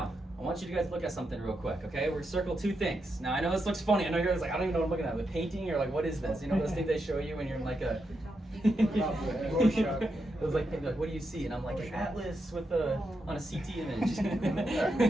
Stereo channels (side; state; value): both; normal; correlation 0.84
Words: I want you to guys look at something real quick, okay? We're circle two things. Now, I know this looks funny. I know you're guys like, I don't even know what I'm looking at. The painting or like, what is this? You know those things they show you when you're in like a... It was like, what do you see? And I'm like, an atlas with on a CT